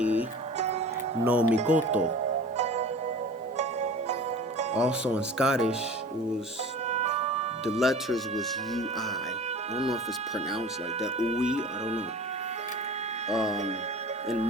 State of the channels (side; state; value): both; normal; correlation 0.39